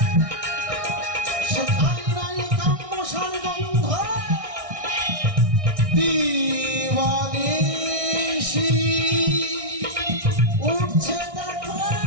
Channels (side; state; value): left; late; 1.6 ms